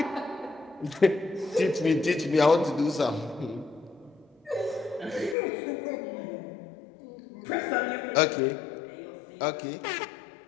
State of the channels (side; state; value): right; drops out; at 5.4 s